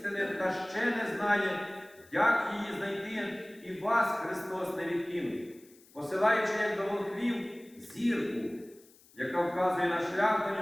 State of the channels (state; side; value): noise; left; hiss, 27 dB below the sound